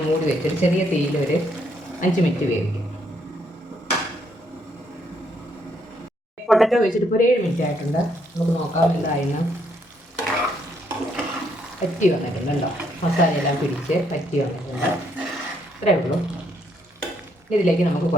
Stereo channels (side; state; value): both; normal; correlation 0.72